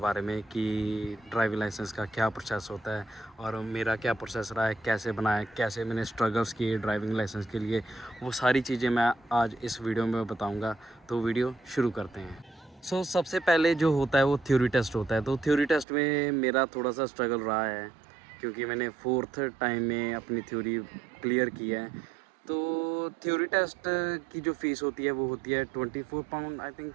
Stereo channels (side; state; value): left; drops out; at 15.9 s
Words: में, कि ड्राइविंग लाइसेंस का क्या प्रोसेस होता है और मेरा क्या प्रोसेस रहा है, कैसे बनाया, कैसे मैंने स्ट्रगल्स किए ड्राइविंग लाइसेंस के लिए, वो सारी चीज़ें मैं आज इस वीडियो में बताऊँगा। तो वीडियो शुरू करते हैं। सबसे पहले जो होता है वो थ्योरी टेस्ट होता है। तो थ्योरी टेस्ट में मेरा थोड़ा सा स्ट्रगल रहा है, क्योंकि मैंने 4th टाइम में अपनी थ्योरी क्लियर की है। तो थ्योरी टेस्ट की जो फ़ीस होती है वो होती है 24 पाउंड, आई थिंक